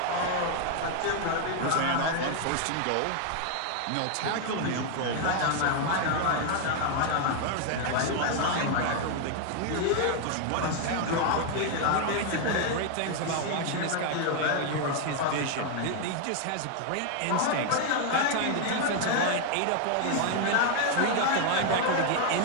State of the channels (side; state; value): both; different; correlation 0.00